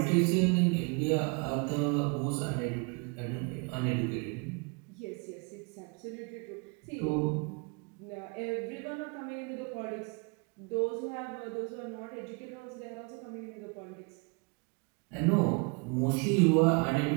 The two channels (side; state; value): left; quieter; 32.8 dB